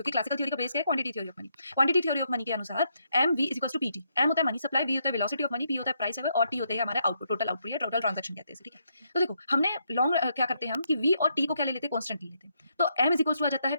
क्लासिकल थ्योरी का बेस क्या है? Quantity theory of money. Quantity theory of money के अनुसार M V is equal to P T. M होता है मनी सप्लाई, वी होता है वेलोसिटी ऑफ मनी, पी होता है प्राइस और टी होता है हमारा आउटपुट, टोटल आउटपुट या टोटल ट्रांजैक्शन कहते हैं इसे। ठीक है, तो देखो हमने लॉन्ग क्या करते हैं हम कि वी और टी को क्या ले लेते हैं? कांस्टेंट ले लेते हैं। तो एम इज इक्वल टू आ जाता है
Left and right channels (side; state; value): both; inverted; correlation -0.77